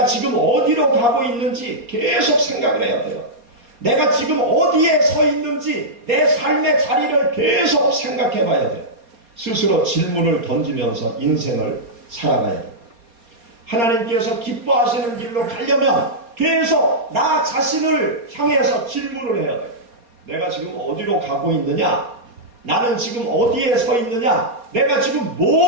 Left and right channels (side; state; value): left; late; 4.2 ms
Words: 지금 어디로 가고 있는지 계속 생각을 해야 돼요. 내가 지금 어디에 서 있는지 내 삶의 자리를 계속 생각해 봐야 돼요. 스스로 질문을 던지면서 인생을 살아가야 돼요. 하나님께서 기뻐하시는 길로 가려면 계속 나 자신을 향해서 질문을 해야 돼요. 내가 지금 어디로 가고 있느냐? 나는 지금 어디에 서 있느냐? 내가 지금